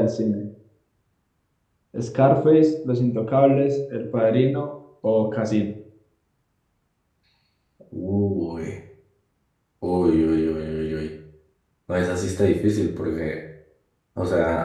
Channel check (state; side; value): identical; both; correlation 1.00